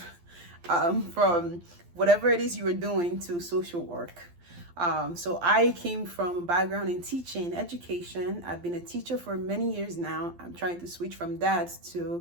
from whatever it is you were doing to social work. So I came from a background in teaching, education. I've been a teacher for many years now. I'm trying to switch from that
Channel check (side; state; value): left; late; 12 ms